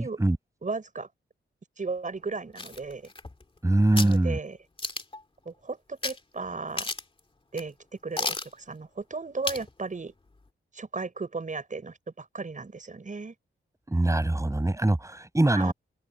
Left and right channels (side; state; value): both; normal; correlation 0.80